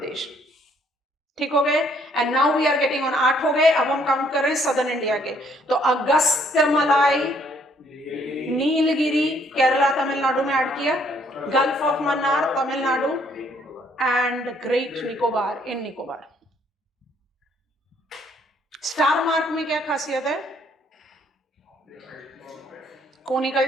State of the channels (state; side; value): normal; both; correlation 0.66